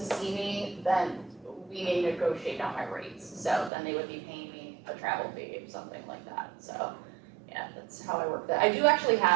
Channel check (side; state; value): left; drops out; at 3.7 s